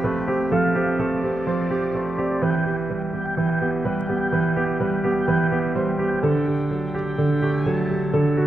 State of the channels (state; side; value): noise; left; hum, 17 dB below the sound